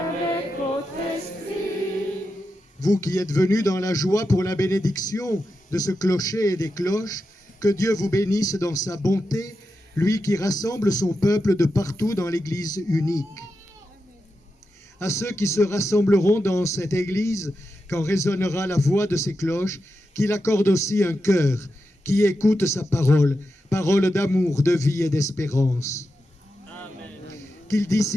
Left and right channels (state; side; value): normal; both; correlation 0.88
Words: votre esprit. Vous qui êtes venus dans la joie pour la bénédiction de ce clocher et des cloches, que Dieu vous bénisse dans sa bonté, lui qui rassemble son peuple de partout dans l'Église unique. À ceux qui se rassembleront dans cette Église, quand résonnera la voix de ces cloches, qu'il accorde aussi un cœur qui écoute sa parole, parole d'amour, de vie et d'espérance. Qu'il